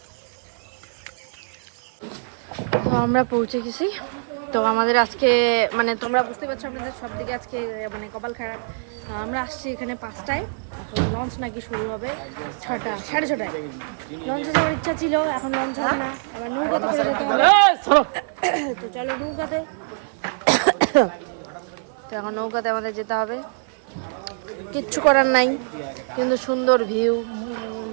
তো আমরা পৌঁছে গেছি তো আমাদের আজকে মানে তোমরা বুঝতে পারছো আমাদের সব দিকে আজকে মানে কপাল খারাপ। আমরা আসছি এখানে 5টায়, এখন লঞ্চ নাকি শুরু হবে 6টা 6:30টায়। লঞ্চে যাওয়ার ইচ্ছা ছিল, এখন লঞ্চ হবে না, আবার নৌকাতে করে যেতে হবে। তো চলো নৌকাতে, তো এখন নৌকাতে আমাদের যেতে হবে, কিচ্ছু করার নাই, কিন্তু সুন্দর ভিউ।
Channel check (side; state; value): left; silent; 56 dB below the other